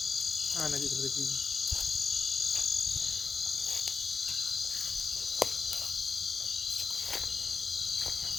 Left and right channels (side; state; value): right; quieter; 4.8 dB